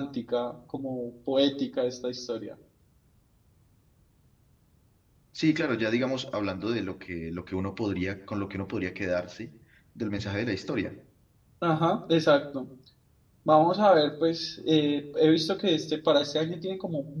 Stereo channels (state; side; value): identical; both; correlation 1.00